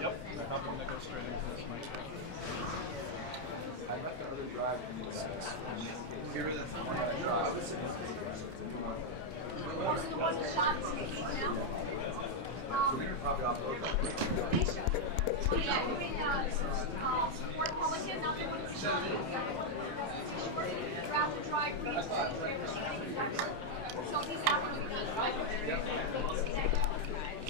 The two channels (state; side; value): late; left; 31 ms